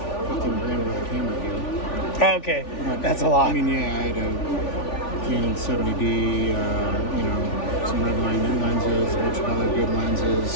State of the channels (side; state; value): right; late; 3.4 ms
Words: grand worth of camera gear. Oh, okay, that's a lot. I mean, yeah, I had a Canon 70D, some Redline lenses, a bunch of other good